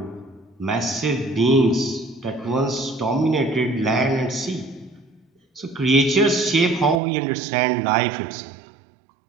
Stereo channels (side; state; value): left; drops out; at 7.0 s